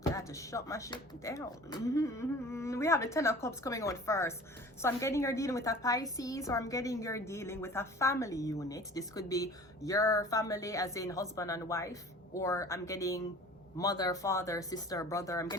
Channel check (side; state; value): both; normal; correlation 0.44